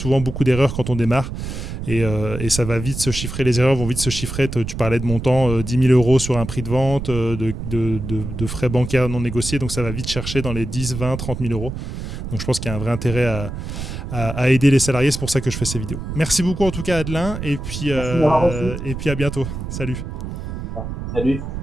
beaucoup d'erreurs quand on démarre et ça va vite se chiffrer, les erreurs vont vite se chiffrer. Tu parlais de montant 10 000 € sur un prix de vente, de frais bancaires non négociés, donc ça va vite chercher dans les 10, 20, 30 000 €. Donc je pense qu'il y a un vrai intérêt à aider les salariés, c'est pour ça que je fais ces vidéos. Merci beaucoup en tout cas Adelin, et puis à bientôt. Salut. Salut.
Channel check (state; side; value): noise; right; rumble, 6 dB below the sound